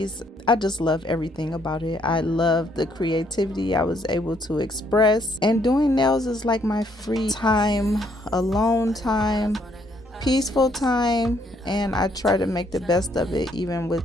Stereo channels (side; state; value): both; normal; correlation 0.69